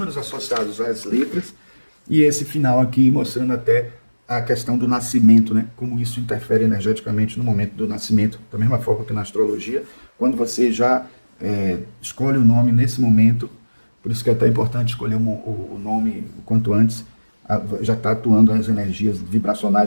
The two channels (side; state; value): both; inverted; correlation -1.00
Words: associados às letras, e esse final aqui mostrando até a questão do nascimento, né? Como isso interfere energeticamente no momento do nascimento, da mesma forma que na astrologia, quando você já escolhe o nome nesse momento, por isso que é até importante escolher o nome o quanto antes, já está atuando as energias